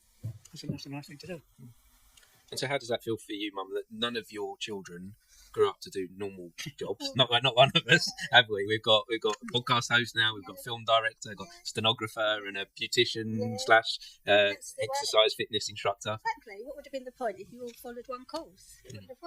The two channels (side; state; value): both; identical; correlation 1.00